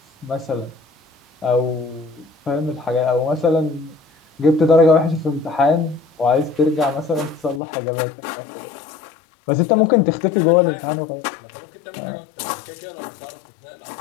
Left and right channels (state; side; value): drops out; right; at 7.6 s